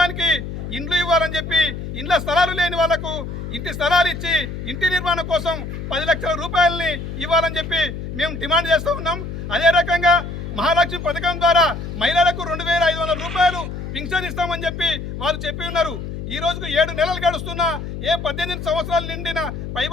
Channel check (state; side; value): noise; left; hum, 7 dB below the sound